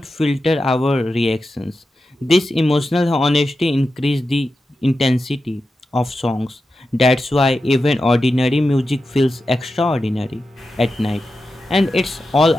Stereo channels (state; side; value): normal; both; correlation 0.91